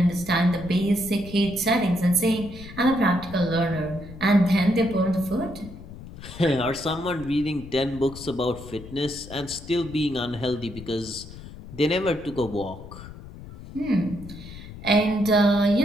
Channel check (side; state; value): left; noise; rumble, 15 dB below the sound